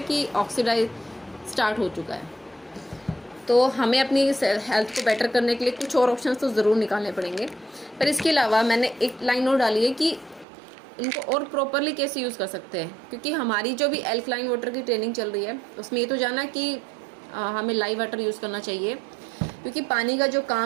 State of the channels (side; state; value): left; drops out; at 10.5 s